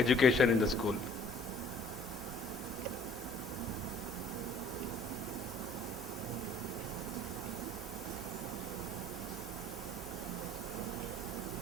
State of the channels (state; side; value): normal; both; correlation 0.55